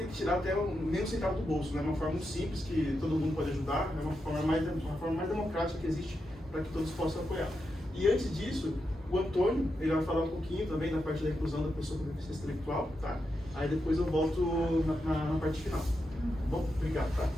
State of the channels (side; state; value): both; normal; correlation 0.86